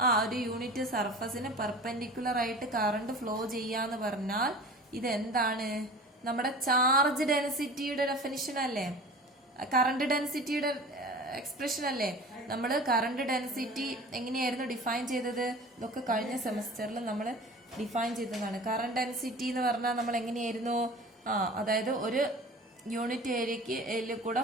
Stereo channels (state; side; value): normal; both; correlation 0.39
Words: ഒരു യൂണിറ്റ് സർഫസിന് പെർപെൻഡിക്കുലർ ആയിട്ട് കറണ്ട് ഫ്ലോ ചെയ്യാന്ന് പറഞ്ഞാൽ ഇത് എന്താണ്, നമ്മുടെ ചാർജ് ഡെൻസിറ്റിയുടെ ഡെഫിനിഷൻ അല്ലേ, കറണ്ട് ഡെൻസിറ്റിയുടെ എക്സ്പ്രഷൻ അല്ലേ. നമ്മൾ കറണ്ട് ഡെൻസിറ്റി എങ്ങനെയായിരുന്നു ഡിഫൈൻ ചെയ്തത്, ഇതൊക്കെ കഴിഞ്ഞ സെമസ്റ്ററിൽ നമ്മൾ ഡിഫൈൻ ചെയ്തതാണ്. കറണ്ട് ഡെൻസിറ്റി എന്ന് പറഞ്ഞാൽ നമ്മൾ എങ്ങനെയായിരുന്നു, അതായത് ഒരു യൂണിറ്റ് ഏരിയക്ക് കൂടെ